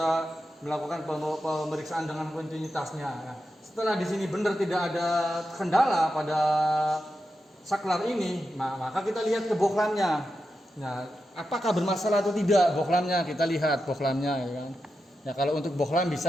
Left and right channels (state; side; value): normal; both; correlation 0.89